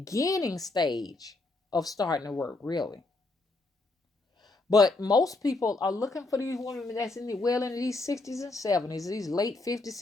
stage of starting to work, really. But most people are looking for these women that's into these 60s and 70s, these late 50s,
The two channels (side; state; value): right; quieter; 3.2 dB